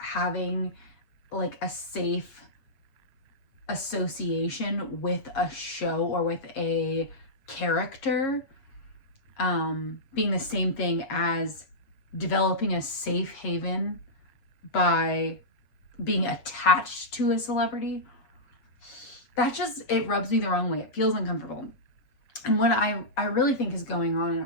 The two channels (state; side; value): late; right; 7.5 ms